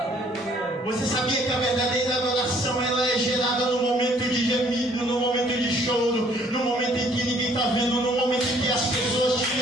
Você sabia que a verdadeira adoração ela é gerada no momento de gemido, no momento de choro, no momento em que ninguém está vendo, no momento em que as pessoas te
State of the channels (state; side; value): normal; both; correlation 0.61